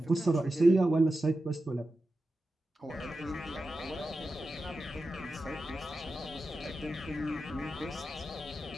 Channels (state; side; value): normal; both; correlation 0.92